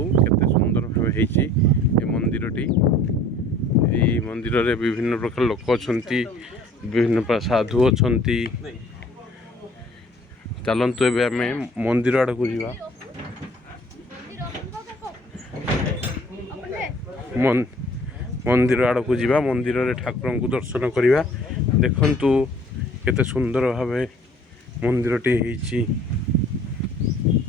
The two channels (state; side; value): normal; both; correlation 0.53